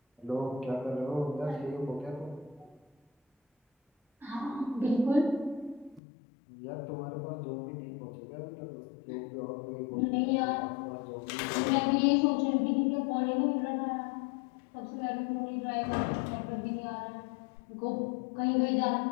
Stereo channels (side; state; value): right; drops out; at 6.0 s